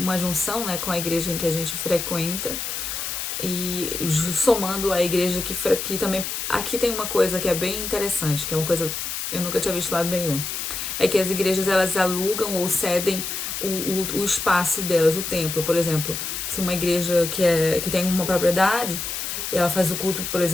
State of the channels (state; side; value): noise; left; hiss, 4 dB below the sound